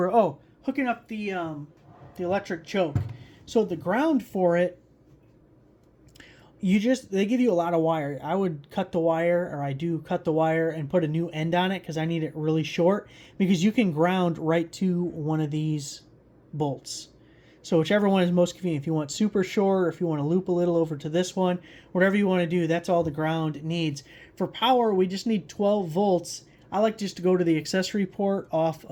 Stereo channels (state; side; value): identical; both; correlation 1.00